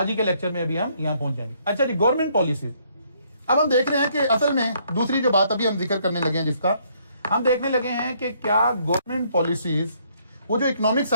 ही के लेक्चर में अभी हम यहां पहुंच जाएंगे। अच्छा जी, गवर्नमेंट पॉलिसी। अब हम देख रहे हैं कि असल में दूसरी जो बात अभी हम जिक्र करने लगे हैं, जिसका हम देखने लगे हैं कि क्या गवर्नमेंट पॉलिसीज, वो जो इकोनॉमिक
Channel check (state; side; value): inverted; both; correlation -0.68